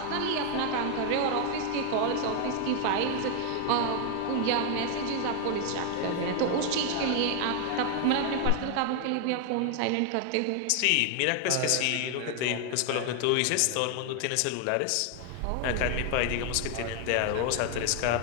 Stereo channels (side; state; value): both; different; correlation 0.00